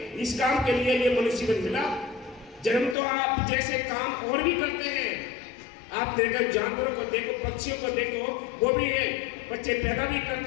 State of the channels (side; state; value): right; drops out; at 3.0 s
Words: इस काम के लिए ये मनुष्य जीवन मिला। जन्म तो आप जैसे काम और भी करते हैं, आप देखो जानवरों को देखो, पक्षियों को देखो, वो भी बच्चे पैदा भी